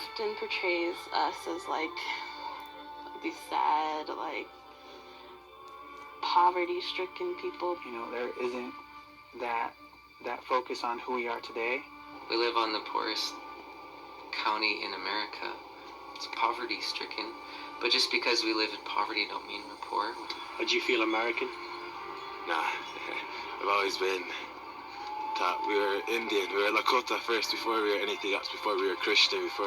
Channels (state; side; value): identical; both; correlation 1.00